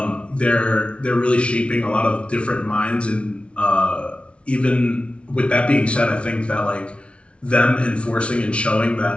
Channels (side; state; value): right; late; 0.060 ms